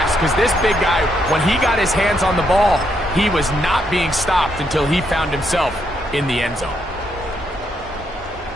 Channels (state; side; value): normal; both; correlation 0.77